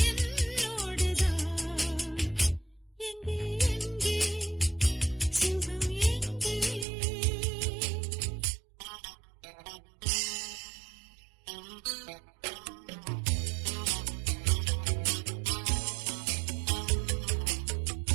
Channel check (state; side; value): drops out; left; at 6.9 s